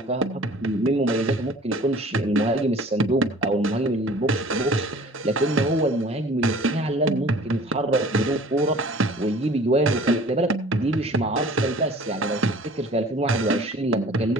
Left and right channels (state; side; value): normal; both; correlation 0.48